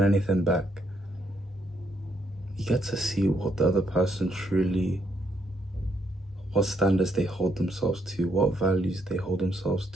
anything back, you get to see what the other person truly, what standards they hold themselves to, what values they hold themselves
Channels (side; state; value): both; normal; correlation 0.74